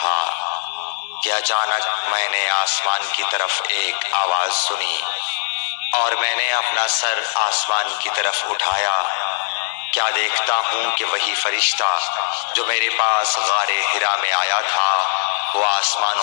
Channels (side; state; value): right; silent; digital silence